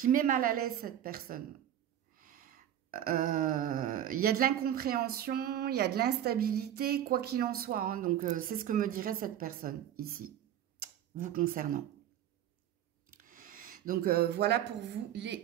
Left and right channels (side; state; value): left; quieter; 10.9 dB